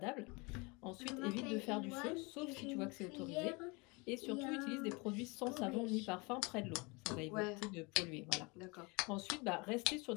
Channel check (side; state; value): right; quieter; 28.0 dB